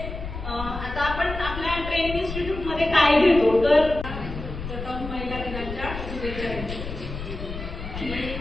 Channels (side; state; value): left; noise; rumble, 8 dB below the sound